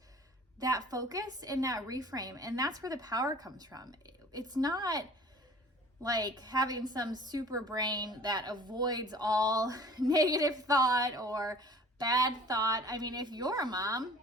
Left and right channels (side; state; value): both; normal; correlation 0.48